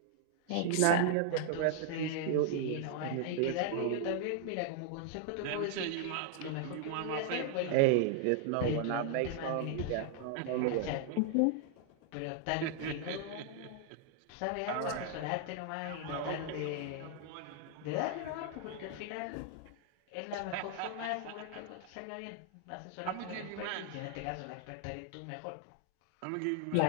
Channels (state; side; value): different; both; correlation 0.00